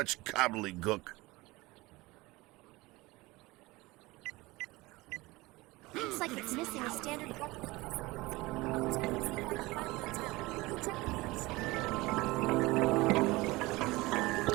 gobbledygook. Looks like it's missing a standard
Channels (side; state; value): left; quieter; 21.4 dB